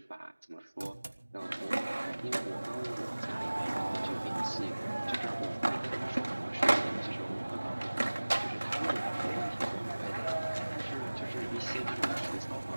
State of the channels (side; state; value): both; inverted; correlation -1.00